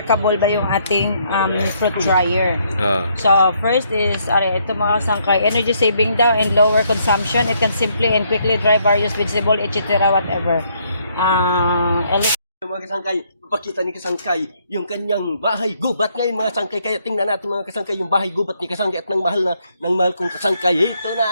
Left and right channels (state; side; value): inverted; both; correlation -0.71